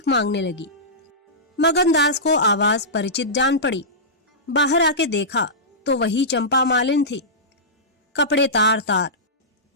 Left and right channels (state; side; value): normal; both; correlation -0.16